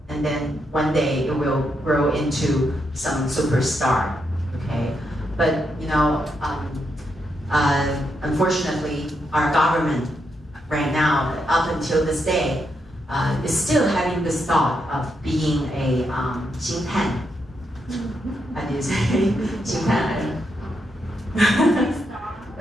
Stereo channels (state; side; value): normal; both; correlation 0.81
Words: and then one day it will grow into some superstar, okay? But, unfortunately, our government right now, up until this day, is still having this thought of being a 星探. How do you say 星探?